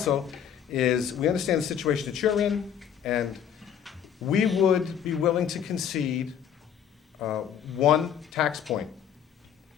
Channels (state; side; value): quieter; right; 8.7 dB